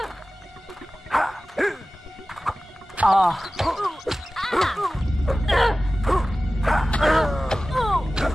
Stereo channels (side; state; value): both; normal; correlation 0.96